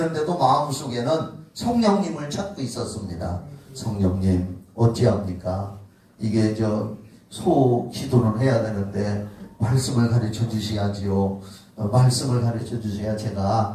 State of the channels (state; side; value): identical; both; correlation 1.00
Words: 마음속에는 성령님을 찾고 있었습니다. 성령님, 어찌합니까? 이게 소 기도는 해야 되는데 말씀을 가르쳐 주셔야지요. 말씀을 가르쳐 주셔야